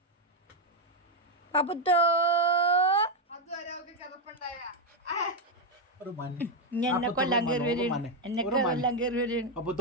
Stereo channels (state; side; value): normal; both; correlation 0.03